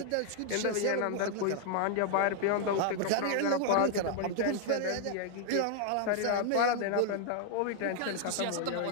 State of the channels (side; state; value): both; different; correlation 0.00